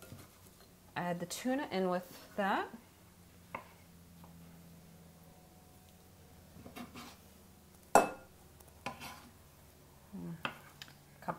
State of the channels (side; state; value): both; identical; correlation 1.00